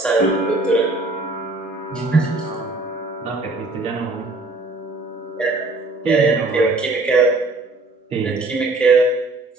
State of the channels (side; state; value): left; quieter; 3.1 dB